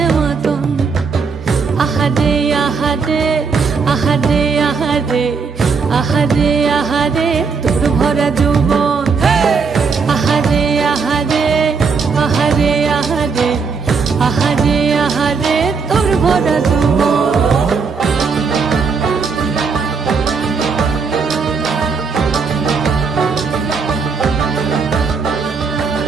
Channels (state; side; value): quieter; left; 5.2 dB